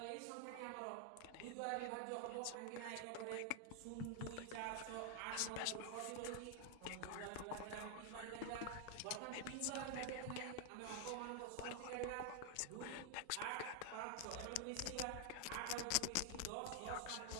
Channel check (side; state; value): both; different; correlation 0.00